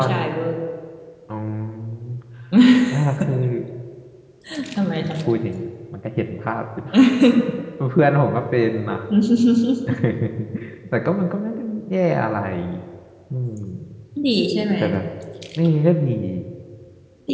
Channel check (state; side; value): identical; both; correlation 1.00